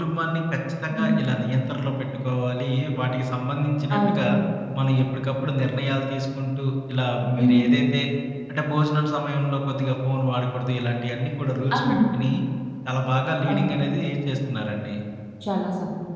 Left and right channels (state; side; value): identical; both; correlation 1.00